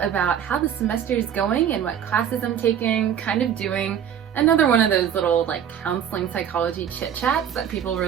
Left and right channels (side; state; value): left; quieter; 8.9 dB